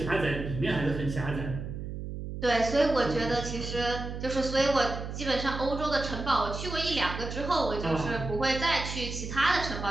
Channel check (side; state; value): right; noise; hum, 7 dB below the sound